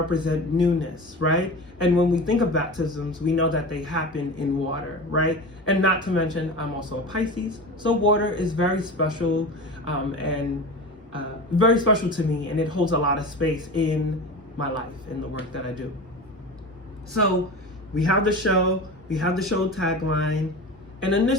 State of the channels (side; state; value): both; normal; correlation 0.30